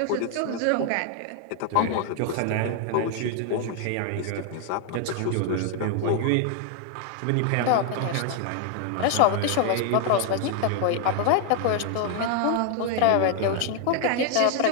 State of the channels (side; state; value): both; different; correlation 0.00